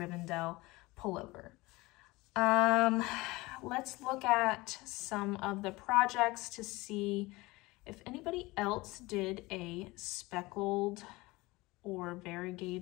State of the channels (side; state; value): right; quieter; 21.7 dB